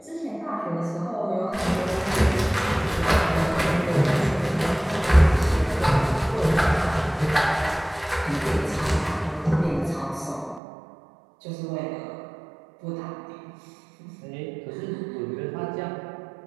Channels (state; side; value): drops out; left; at 10.6 s